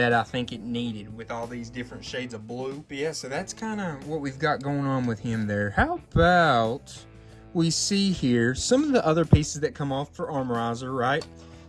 I think it needed with all these different shades of blue. But yeah, so that's kind of what we've got going on with him there. How about we see here some of the other pieces that come off for Armorizer, right?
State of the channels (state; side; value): identical; both; correlation 1.00